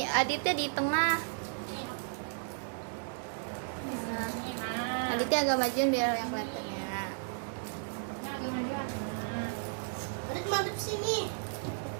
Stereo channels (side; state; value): left; silent; digital silence